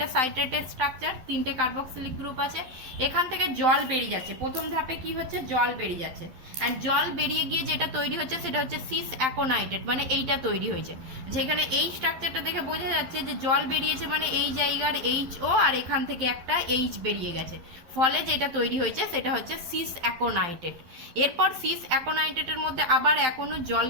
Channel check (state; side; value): late; left; 12 ms